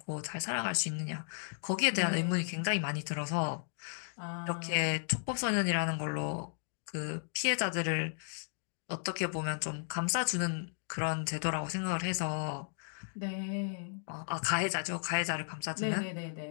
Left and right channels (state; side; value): silent; right; digital silence